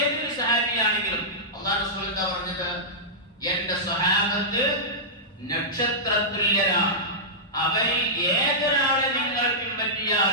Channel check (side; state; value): both; normal; correlation -0.13